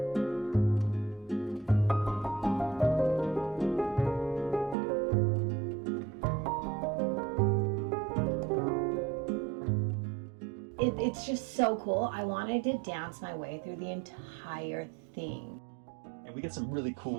It's just so cool. I wanted to dance my way through the entire thing. And we get some really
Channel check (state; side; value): drops out; left; at 4.8 s